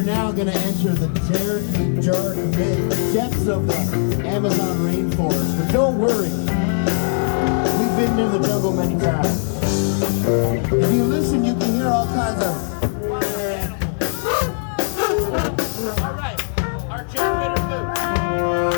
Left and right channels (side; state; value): right; silent; 63 dB below the other